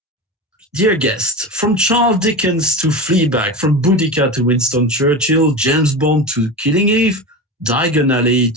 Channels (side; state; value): both; normal; correlation 0.25